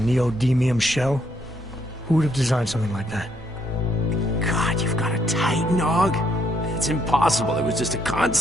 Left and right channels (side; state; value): both; normal; correlation 0.72